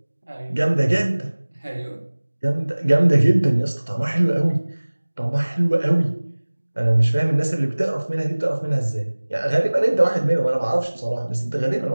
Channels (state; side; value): inverted; both; correlation -1.00